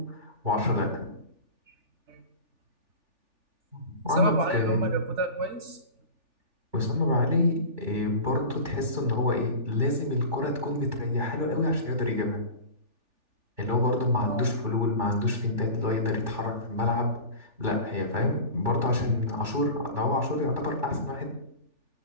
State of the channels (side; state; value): left; late; 3.4 ms